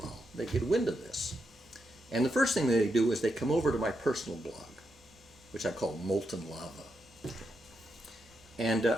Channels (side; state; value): both; normal; correlation 0.83